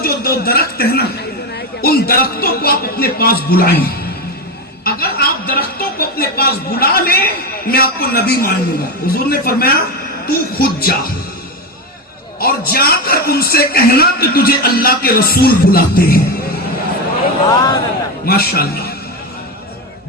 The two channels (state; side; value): normal; both; correlation 0.15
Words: جو 2 درخت ہیں نا، ان درختوں کو آپ اپنے پاس بلائیں، اگر آپ درختوں کو اپنے پاس بلا لیں میں آپ کو نبی مان لوں گا۔ حضور نے فرمایا، تو خود جا اور جا کر ان سے کہنا کہ تجھے اللہ کے رسول بلاتے ہیں۔ ماشاءاللہ،